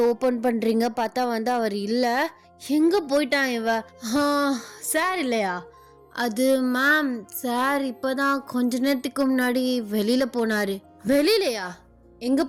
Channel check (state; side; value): identical; both; correlation 1.00